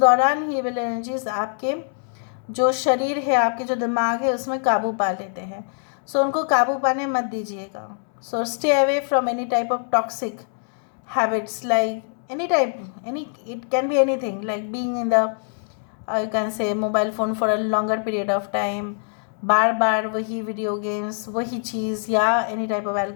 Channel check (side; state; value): right; silent; 63 dB below the other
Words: ही ईविल एनर्जीज़ आपके जो शरीर है, आपके जो दिमाग है, उसमें काबू पा लेते हैं। सो उनको काबू पाने मत दीजिएगा। So stay away from any type of toxic habits, like it can be anything, like being in the you can say mobile phone for a longer period of time, बार बार वही वीडियो गेम्स, वही चीज़, या any type of